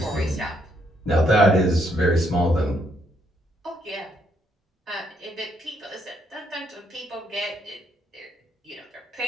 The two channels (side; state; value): both; normal; correlation 0.73